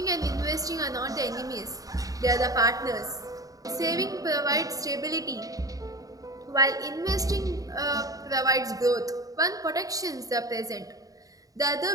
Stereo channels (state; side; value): late; left; 0.17 ms